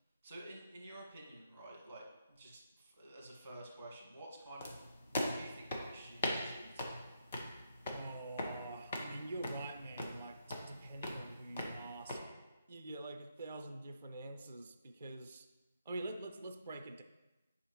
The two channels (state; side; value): inverted; both; correlation -0.77